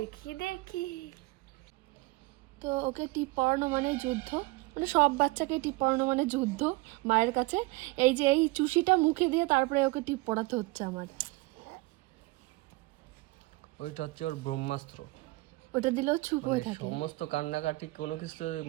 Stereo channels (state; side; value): quieter; left; 22.6 dB